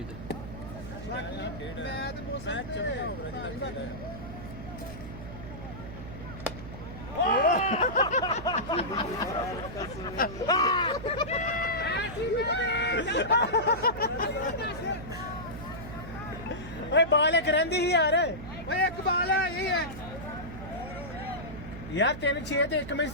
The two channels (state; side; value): noise; right; hum, 11 dB below the sound